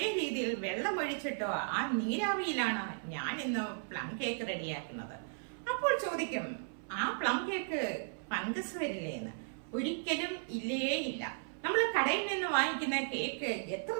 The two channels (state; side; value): silent; left; 54 dB below the other